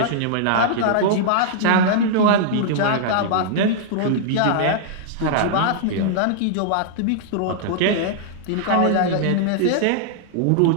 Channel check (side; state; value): both; different; correlation -0.01